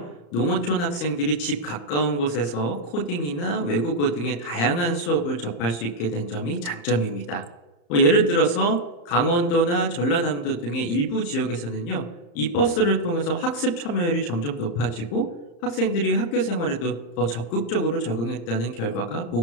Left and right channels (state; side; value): late; right; 35 ms